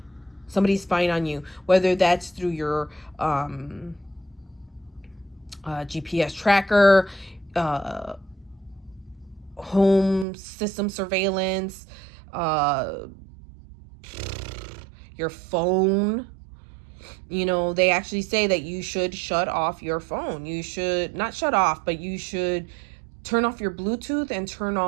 Somebody's spying on you, whether that's through your GPS tracker, home system surveillance, your phone. You know, they actually say that you should shut off your phone. You should not shut off, but you should turn off your Bluetooth and turn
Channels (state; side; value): drops out; left; at 10.2 s